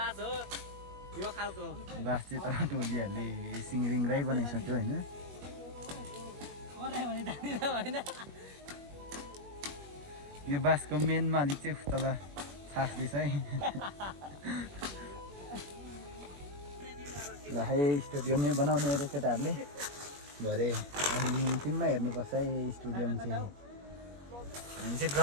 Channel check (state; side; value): late; left; 21 ms